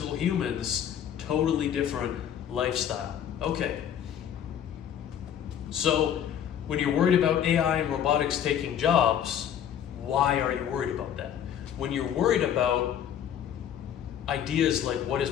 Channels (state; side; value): quieter; right; 9.5 dB